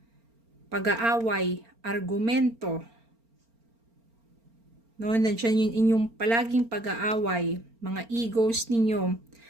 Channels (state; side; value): late; left; 4.4 ms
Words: pag-aaway, argumento. No, nandiyan yung inyong palaging pag-aaway, mga egos ninyo.